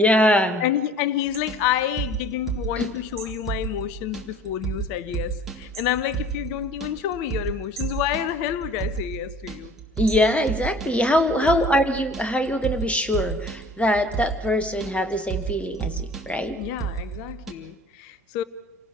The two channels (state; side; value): normal; both; correlation 0.48